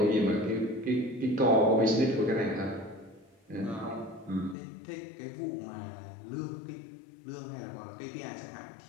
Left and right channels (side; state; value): right; drops out; at 4.5 s